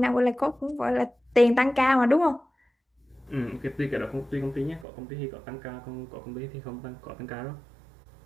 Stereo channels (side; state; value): left; drops out; at 4.9 s